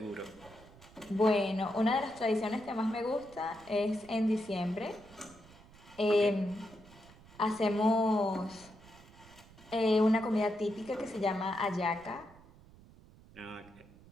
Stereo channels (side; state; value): right; noise; rumble, 23 dB below the sound